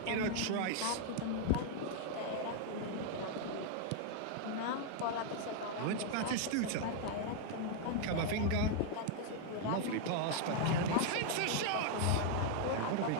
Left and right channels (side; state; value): both; different; correlation 0.00